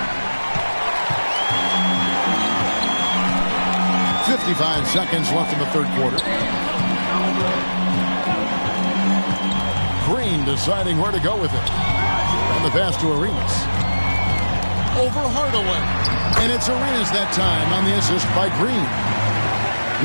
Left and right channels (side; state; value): both; inverted; correlation -1.00